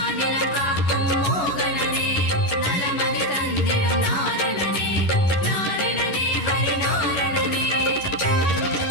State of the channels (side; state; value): right; late; 11 ms